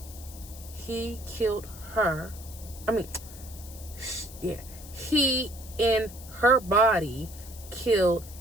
He killed her. He in her body killed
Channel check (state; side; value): noise; left; hiss, 17 dB below the sound